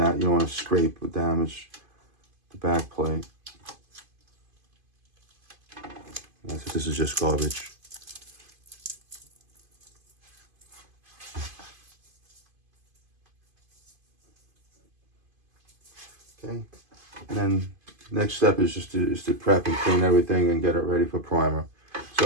want to scrape or damage the back plate. This is just garbage. Okay, and then next step is just to prep and clean everything and get it ready for primer.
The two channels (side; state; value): left; late; 2.5 ms